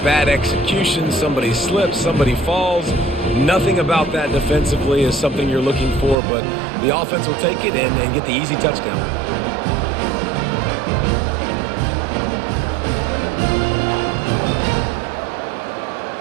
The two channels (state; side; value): drops out; left; at 6.2 s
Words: execution. Somebody slips, somebody falls. Nothing about that defensively is something you're looking for, but the offense will take it and get the easy touchdown.